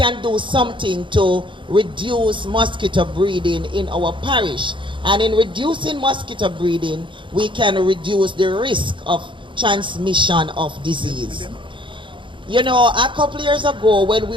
do something to reduce mosquito breeding in our parish. And in reducing mosquito breeding, we can reduce the risk of transmission of disease. You know, a couple years ago when we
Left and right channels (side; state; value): left; late; 0.24 ms